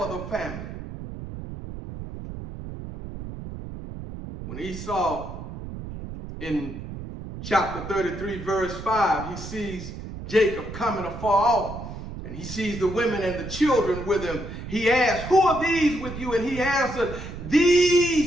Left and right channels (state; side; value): noise; right; rumble, 10 dB below the sound